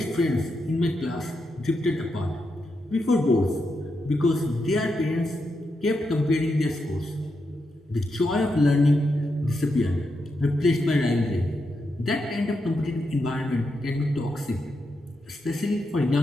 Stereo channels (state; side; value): normal; both; correlation 0.84